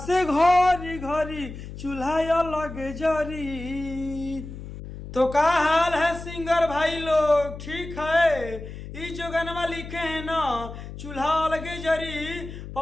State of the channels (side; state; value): left; noise; hum, 11 dB below the sound